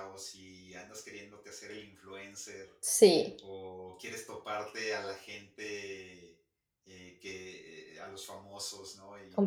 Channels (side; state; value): both; identical; correlation 1.00